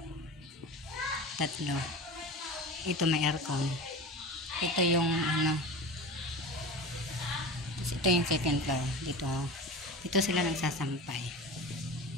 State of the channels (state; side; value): normal; both; correlation 0.31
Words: tatlo. Ito may aircon. Ito yung ano. Ito yung second floor. Dito sila nagsasampay.